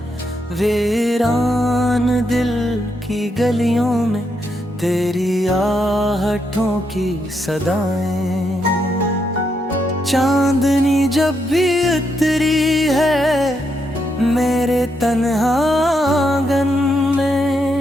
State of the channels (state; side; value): normal; both; correlation 0.80